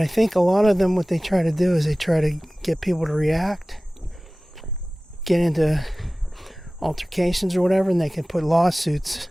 think a lot of them, what they try to do is they try to get people to react, get into altercations or whatever, and they can put lawsuits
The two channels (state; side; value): normal; both; correlation 0.98